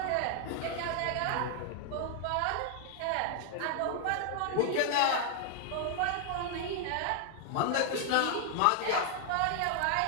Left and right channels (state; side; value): different; both; correlation 0.00